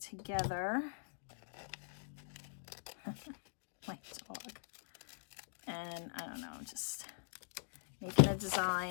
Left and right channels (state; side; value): silent; right; digital silence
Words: My dog. And I don't know, just making a